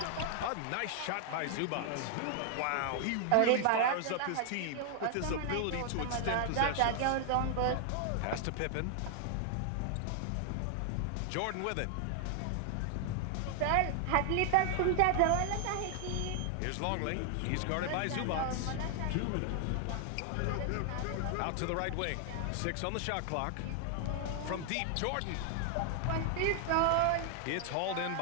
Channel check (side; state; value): both; different; correlation 0.00